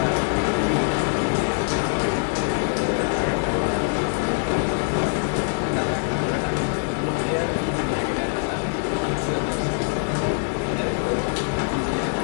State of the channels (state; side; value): silent; right; 59 dB below the other